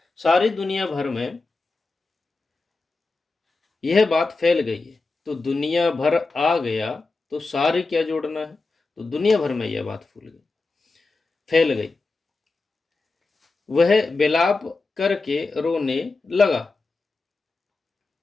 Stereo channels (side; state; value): right; quieter; 3.7 dB